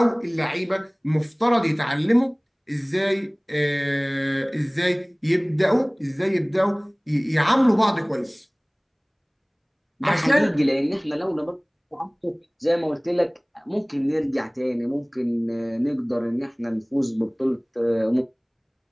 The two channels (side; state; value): both; identical; correlation 1.00